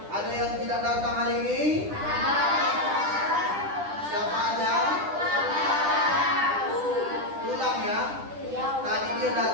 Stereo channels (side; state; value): left; late; 10 ms